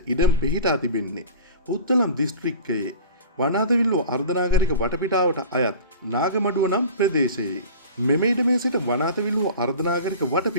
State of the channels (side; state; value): both; inverted; correlation -0.38